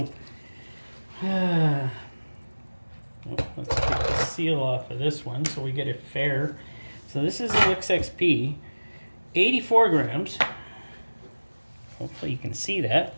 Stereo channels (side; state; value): both; inverted; correlation -1.00